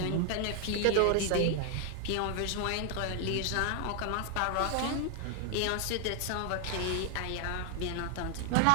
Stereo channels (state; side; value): different; both; correlation 0.00